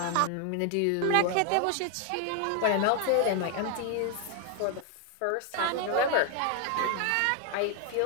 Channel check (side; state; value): both; different; correlation 0.00